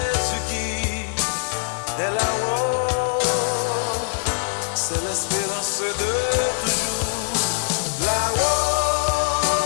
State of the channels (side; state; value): right; silent; digital silence